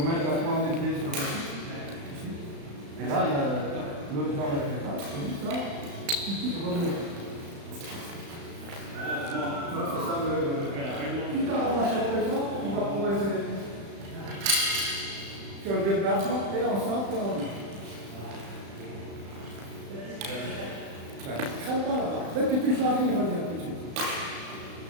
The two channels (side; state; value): left; late; 35 ms